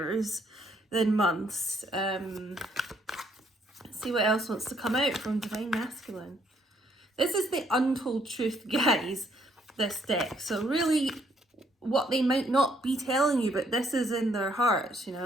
than months. See what else wants to come out from divine masculine. This is the untold truth, guys, this deck. So really what they might not be telling you, but this is in their hearts,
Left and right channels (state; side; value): normal; both; correlation 0.69